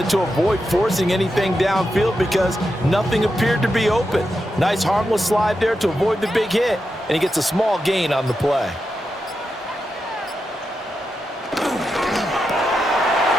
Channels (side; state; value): both; normal; correlation 0.87